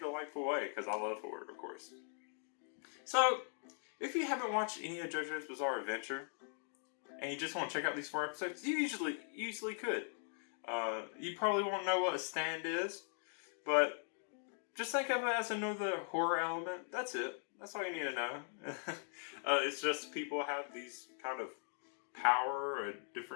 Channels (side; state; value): right; silent; 51 dB below the other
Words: way, because I love horror, of course. So, if you haven't watched any of JoJo's Bizarre Adventure, and you just want to check out these 4 episodes, you easily could. You probably won't know what a stand is, but just think of it as another horror element. That's it. That's all you need to know. It's just people have these kind of power, a